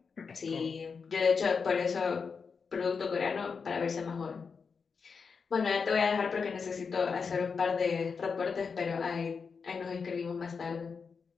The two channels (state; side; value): quieter; right; 5.4 dB